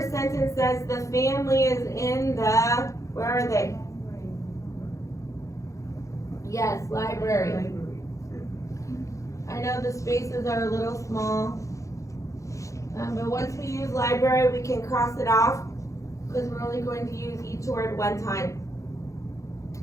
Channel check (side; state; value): right; late; 0.15 ms